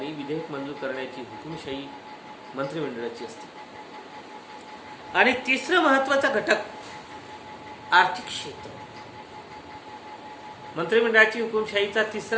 विधेयक मंजूर करण्याची हुकुमशाही मंत्रिमंडळाची असते. आणि तिसरं महत्वाचा घटक आर्थिक क्षेत्र. मंत्रिमंडळाची हुकुमशाहीचा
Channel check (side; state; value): both; identical; correlation 1.00